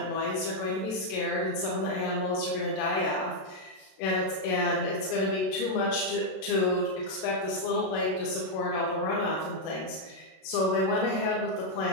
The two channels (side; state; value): right; late; 32 ms